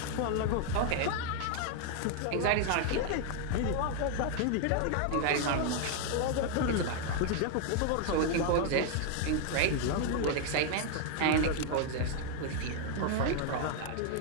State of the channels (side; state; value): both; different; correlation 0.00